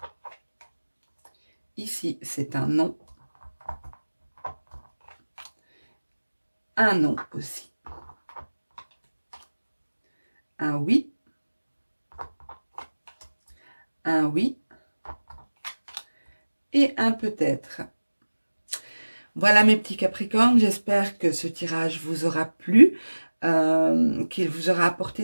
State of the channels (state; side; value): inverted; both; correlation -1.00